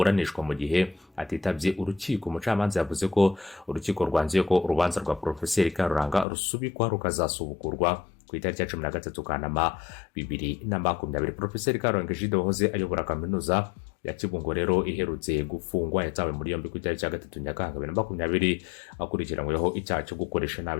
mu gihe atitabye urukiko. Umucamanza yavuze ko urukiko rwanzuye ko urubanza rwa Profeseri Karuranga rusubikwa rukazasubukurwa ku itariki ya 13 Kanama 2020. Profeseri Karuranga Egide wahoze ayobora kaminuza ya Kibungo rero iherutse gufungwa yatawe muri yombi ku itariki ya 3 Nyakanga 2020 akurikiranyweho icyaha cyo gukoresha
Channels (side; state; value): right; drops out; at 6.2 s